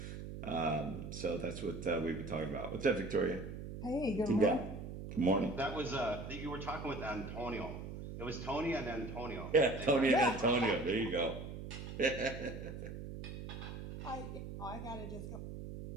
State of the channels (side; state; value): right; noise; hum, 8 dB below the sound